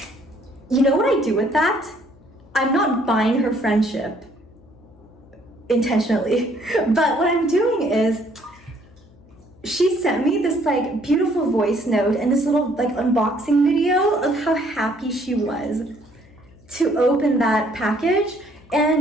you know what I do with that? I'm not buying her friendship intentionally. But what I'm doing is, she sent me this like beautiful voice note and this little like unboxing video of how happy she was to open that package.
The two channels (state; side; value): noise; left; hum, 26 dB below the sound